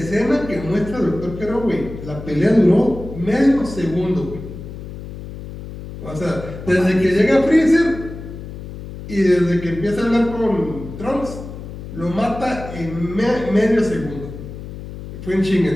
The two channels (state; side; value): noise; left; hum, 11 dB below the sound